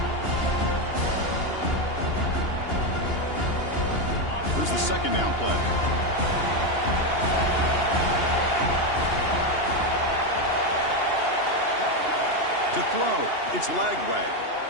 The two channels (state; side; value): late; right; 2.8 ms